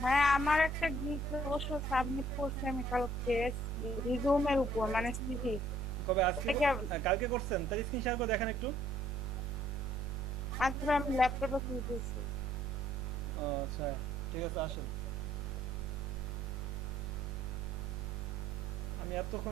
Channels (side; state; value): both; normal; correlation 0.63